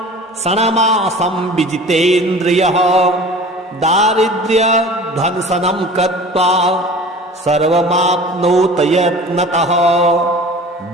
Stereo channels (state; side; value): normal; both; correlation 0.41